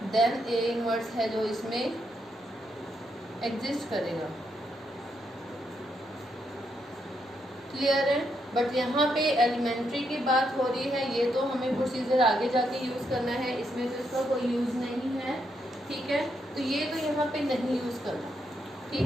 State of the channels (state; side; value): normal; both; correlation 0.79